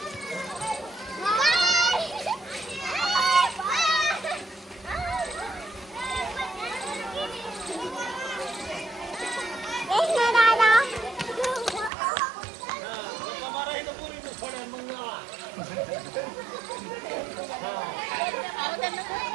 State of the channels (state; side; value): drops out; left; at 11.9 s